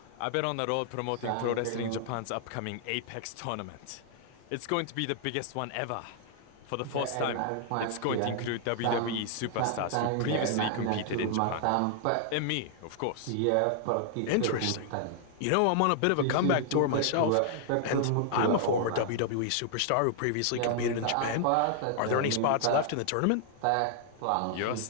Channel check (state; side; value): different; both; correlation 0.00